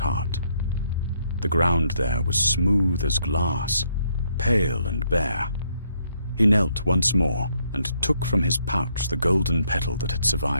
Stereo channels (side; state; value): both; inverted; correlation -0.72